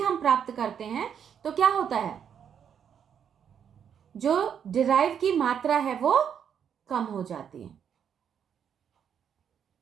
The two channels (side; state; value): left; quieter; 8.1 dB